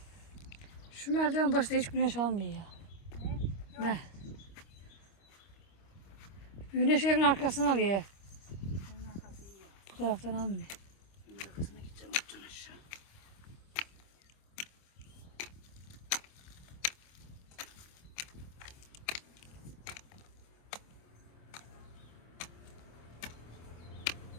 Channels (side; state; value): right; late; 26 ms